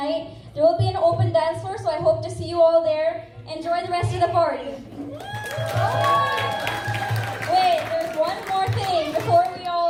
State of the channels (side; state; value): both; identical; correlation 1.00